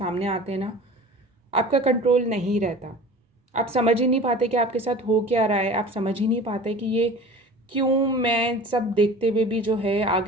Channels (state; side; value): normal; both; correlation 0.40